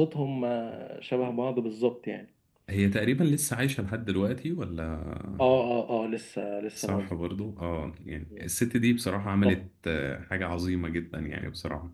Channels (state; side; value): identical; both; correlation 1.00